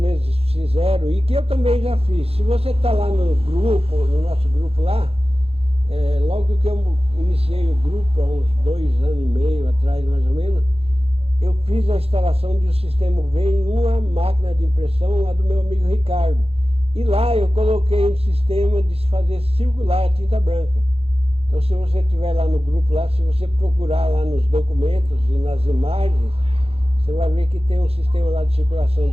fizeram, e que eu também já fiz, se você está lá no grupo, no nosso grupo lá, logo que eu iniciei o grupo, há uns 2 anos e meio atrás mais ou menos, eu fiz a instalação de um sistema V em uma máquina de impressão lá do meu amigo Ricardo. E lá eu coloquei um sistema de fazer circular a tinta branca. Então se você estiver lá no grupo, lá, se você procurar lá nos documentos e nas imagens, você vai ver que tem um sistema lá de circulação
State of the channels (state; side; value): late; left; 0.29 ms